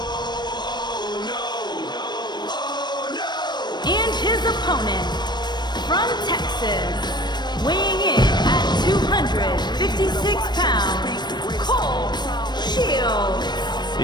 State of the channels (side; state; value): right; late; 0.21 ms